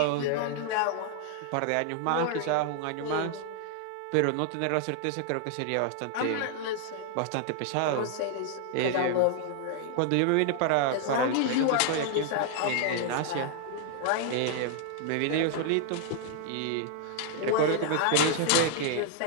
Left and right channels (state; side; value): different; both; correlation 0.00